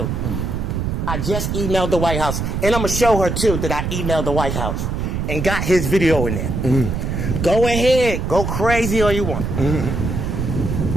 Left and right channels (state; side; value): noise; right; rumble, 2 dB below the sound